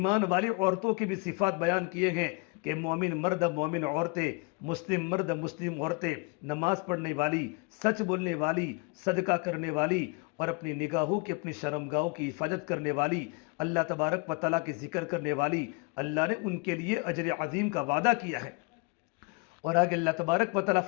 والی عورتوں کی بھی صفات بیان کیے ہیں کہ مومن مرد مومن عورتیں، مسلم مرد مسلم عورتیں، نماز پڑھنے والی، سچ بولنے والی، صدقہ کرنے والی، اور اپنی نگاہوں کی اپنی شرمگاہوں کی حفاظت کرنے والی، اللہ تبارک و تعالیٰ کے ذکر کرنے والی، اللہ نے ان کے لیے اجر عظیم کا وعدہ کیا ہے۔ اور آگے اللہ تبارک و تعالیٰ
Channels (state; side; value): quieter; right; 30.4 dB